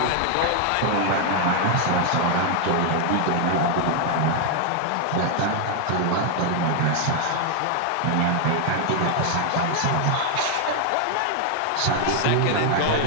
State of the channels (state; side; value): different; both; correlation 0.00